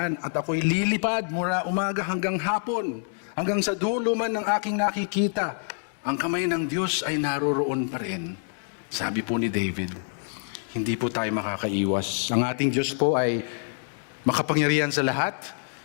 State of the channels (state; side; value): silent; right; digital silence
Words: at ako'y lilipad mula umaga hanggang hapon, hanggang sa dulo man ng aking nakikita. Ang kamay ng Diyos ay naroroon pa rin. Sabi po ni David, hindi po tayo makakaiwas. Ang ating Diyos po ay makapangyarihan sa lahat.